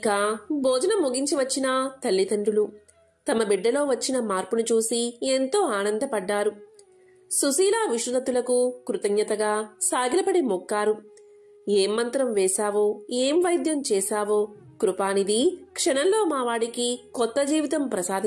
భోజనం ముగించి వచ్చిన తల్లిదండ్రులు తమ బిడ్డలో వచ్చిన మార్పును చూసి ఎంతో ఆనందపడ్డారు. సుశీల విష్ణుదత్తులకు కృతజ్ఞతగా సాగిలపడి మొక్కారు. ఏం మంత్రం వేశావో, ఏం వైద్యం చేశావో, కృపానిధి, క్షణంలో మావాడికి కొత్త జీవితం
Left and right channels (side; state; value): both; identical; correlation 1.00